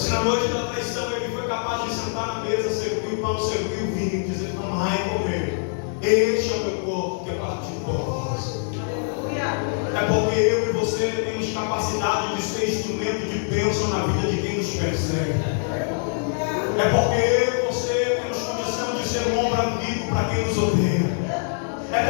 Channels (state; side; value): silent; right; 63 dB below the other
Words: noite da traição, ele foi capaz de sentar na mesa, servir o pão, servir o vinho, e dizer: tomai e comer. Este é o meu corpo que é partido por vós. É porque eu e você temos capacidade de ser instrumento de bênção na vida de quem nos persegue. É porque eu e você temos condição de ser um ombro amigo para quem nos odeia. É